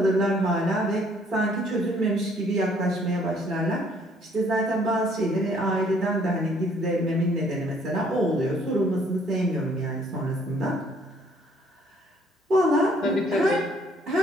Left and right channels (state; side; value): normal; both; correlation 0.63